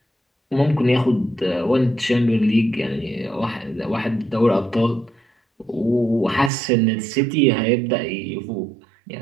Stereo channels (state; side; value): drops out; left; at 6.5 s